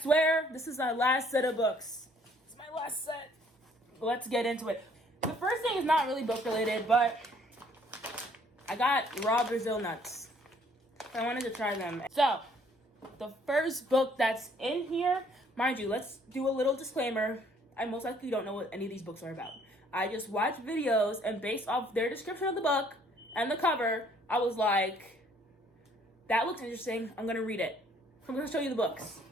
swear this is my last set of books. It's my last set. Let's get into it. The first thing is not really book related, but I got raw Brazil nuts. I wanted to try them. So, the first book that's in here, mind you, let's do a little disclaimer. I most likely don't know what any of these books are about. I just watched videos, and based off their description of the book and the cover, I was like, that looks interesting. I'm going to read it. I'm going to show you the books.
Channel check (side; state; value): both; normal; correlation 0.61